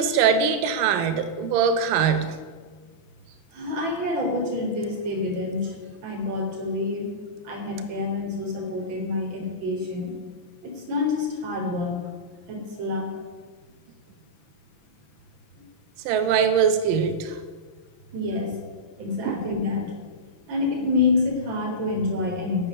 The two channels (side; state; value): left; late; 6.0 ms